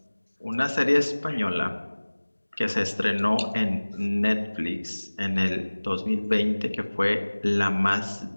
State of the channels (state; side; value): inverted; both; correlation -1.00